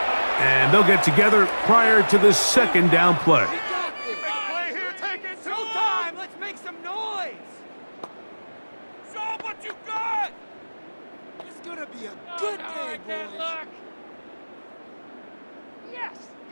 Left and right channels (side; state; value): both; inverted; correlation -1.00